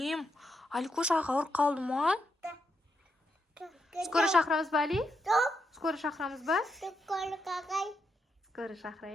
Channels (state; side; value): normal; both; correlation 0.82